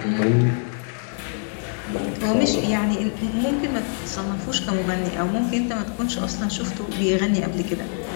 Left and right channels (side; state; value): right; silent; 58 dB below the other